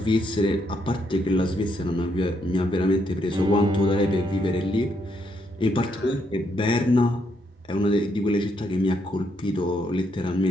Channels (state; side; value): normal; both; correlation 0.75